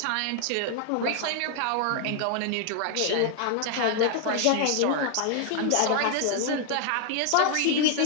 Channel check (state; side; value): different; both; correlation 0.00